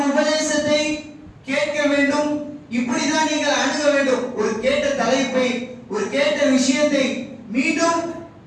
உபதேசத்தை கேட்க வேண்டும், இப்படிதான் நீங்கள் அணுக வேண்டும். ஒரு கேட்ட தலைப்பை, ஒரு கேட்ட விஷயத்தை மீண்டும்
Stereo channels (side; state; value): both; identical; correlation 1.00